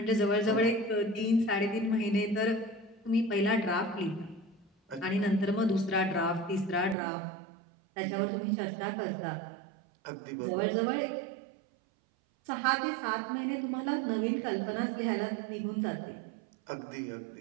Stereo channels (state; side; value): drops out; left; at 7.0 s